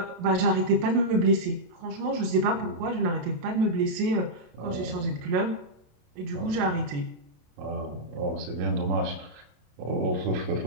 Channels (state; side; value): late; left; 27 ms